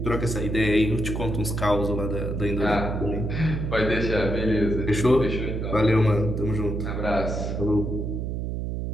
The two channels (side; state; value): right; noise; hum, 3 dB below the sound